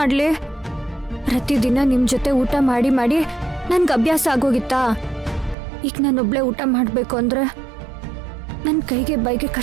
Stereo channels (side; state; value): left; drops out; at 5.6 s